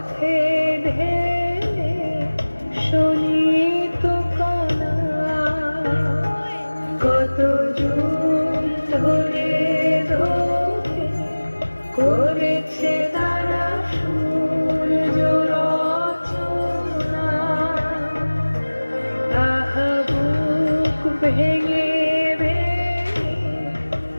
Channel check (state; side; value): inverted; both; correlation -1.00